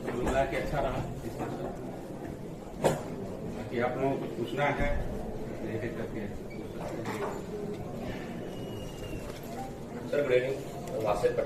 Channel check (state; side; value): identical; both; correlation 1.00